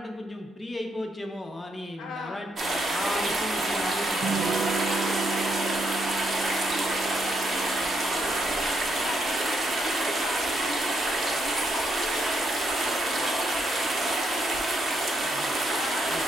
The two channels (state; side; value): normal; both; correlation 0.77